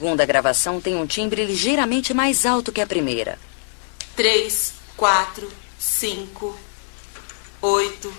gravação tem um timbre ligeiramente mais alto que a primeira. 3, 4, 5, 8,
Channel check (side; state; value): right; silent; 57 dB below the other